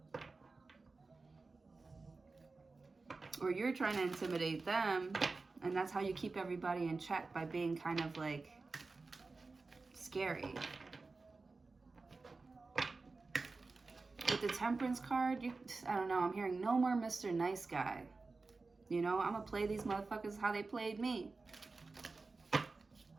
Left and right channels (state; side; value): quieter; left; 3.8 dB